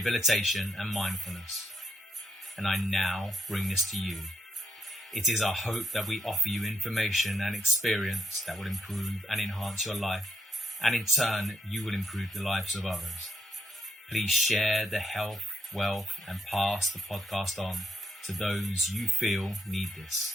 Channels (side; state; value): both; normal; correlation 0.77